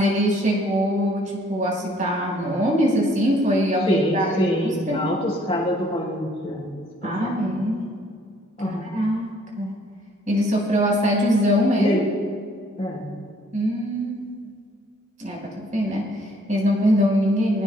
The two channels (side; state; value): both; normal; correlation 0.62